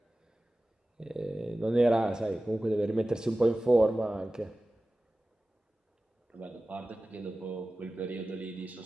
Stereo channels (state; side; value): normal; both; correlation 0.96